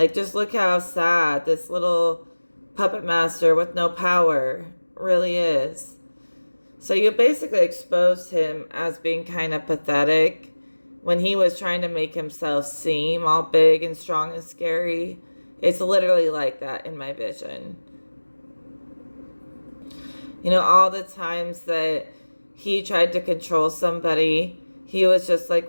just look how sad this little puppet master with no power really is. So you basically exposed him as being kind of pathetic when he was trying to make himself seem all big and strong and scary. It's literally like that in my vision. All the times that he tried to control somebody, he was just like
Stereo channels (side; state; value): both; inverted; correlation -1.00